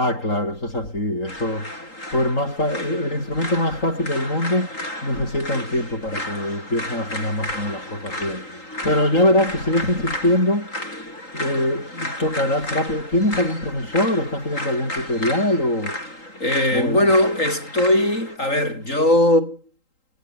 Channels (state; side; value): late; right; 3.8 ms